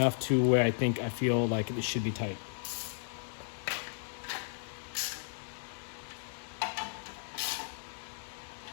to where I feel like it should be tight.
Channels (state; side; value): silent; right; digital silence